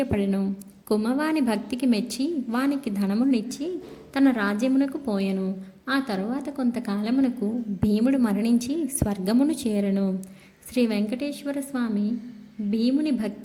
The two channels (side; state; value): both; identical; correlation 1.00